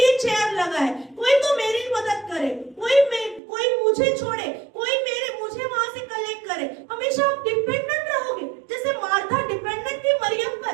चेयर लगाए, कोई तो मेरी मदद करे, कोई मुझे छोड़े, कोई मुझे वहां से कलेक्ट करे। हमेशा आप डिपेंडेंट रहोगे, जैसे मार्था डिपेंडेंट थी मरियम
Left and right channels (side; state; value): left; drops out; at 3.4 s